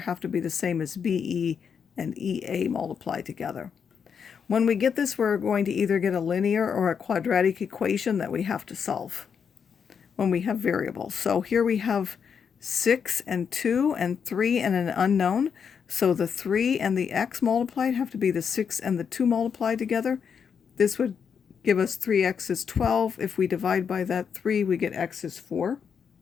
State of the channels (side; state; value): right; quieter; 6.9 dB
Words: have to be the same as BE and EA multiplied together. When we get this, we're going to either get a linear or a quadratic equation that we have to solve when we have variables. So here we have 6 and 2 and 3 and an unknown. So the 3 and the x multiplied have to be the 6 and the 2 multiplied together. This would give us 3x is 12. If we divide by that 3, we get x is 4.